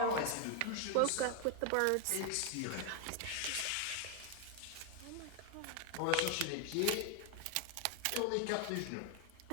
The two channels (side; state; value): both; different; correlation 0.00